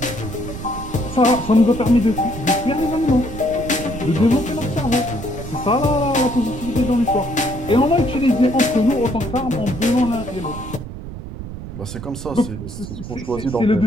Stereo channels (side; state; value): right; noise; rumble, 10 dB below the sound